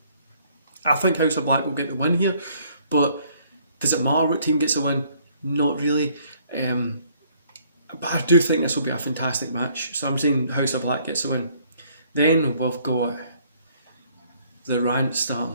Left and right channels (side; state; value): both; inverted; correlation -0.63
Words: I think House of Black will get the win here, but does it matter what team gets the win? Not really. But I do think this will be a fantastic match. So I'm saying House of Black gets the win. Then we've got the rant